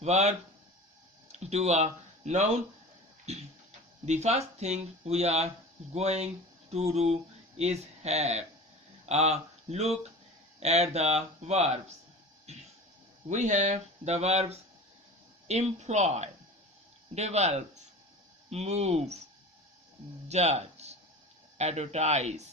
verb to a noun? The first thing we are going to do is have a look at the verbs. We have the verbs employ, develop, move, judge, advertise,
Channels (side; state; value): both; normal; correlation 0.35